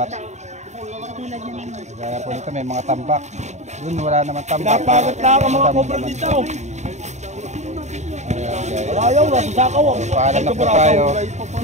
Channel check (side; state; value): left; late; 0.34 ms